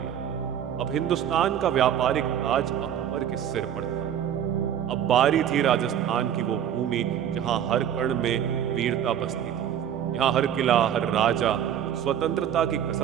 अब हिंदुस्तान का व्यापारिक ताज अकबर के सिर पर था। अब बारी थी राजस्थान की, वो भूमि जहां हर कण में वीरता बसती थी। यहाँ हर किला, हर राजा स्वतंत्रता की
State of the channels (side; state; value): left; quieter; 9.7 dB